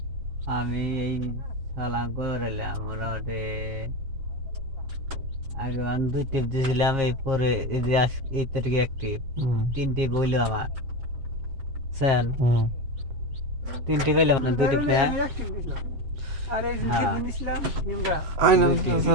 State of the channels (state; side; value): late; left; 7.4 ms